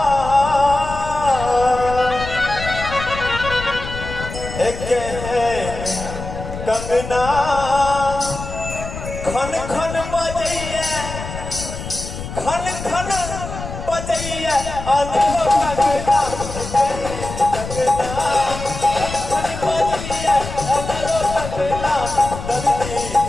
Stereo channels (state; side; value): noise; left; rumble, 9 dB below the sound